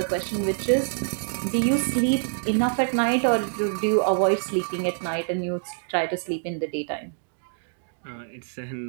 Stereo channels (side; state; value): left; silent; 61 dB below the other